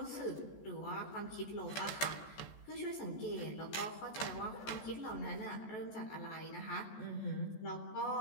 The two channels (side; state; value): right; late; 14 ms